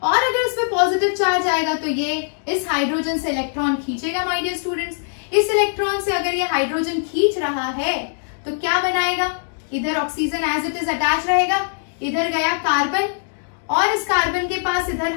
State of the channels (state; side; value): silent; right; digital silence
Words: और अगर इस पे पॉजिटिव चार्ज आएगा तो ये इस हाइड्रोजन से इलेक्ट्रॉन खींचेगा माय डियर स्टूडेंट्स। इस इलेक्ट्रॉन से अगर ये हाइड्रोजन खींच रहा है तो क्या बनाएगा, इधर oxygen as it is attach रहेगा, इधर गया कार्बन, और इस कार्बन के पास इधर